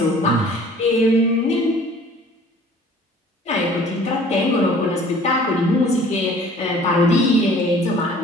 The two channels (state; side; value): normal; both; correlation 0.50